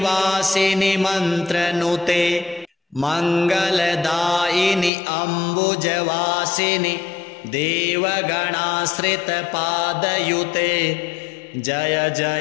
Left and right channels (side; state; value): right; drops out; at 4.9 s